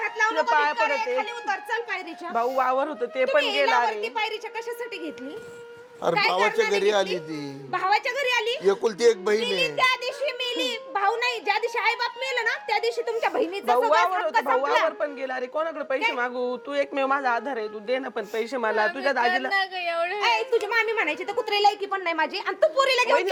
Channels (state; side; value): identical; both; correlation 1.00